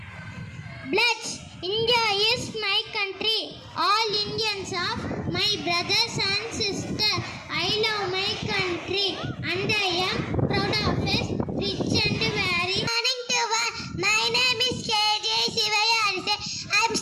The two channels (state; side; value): identical; both; correlation 1.00